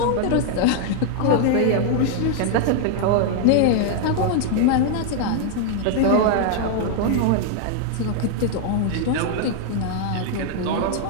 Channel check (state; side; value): different; both; correlation 0.00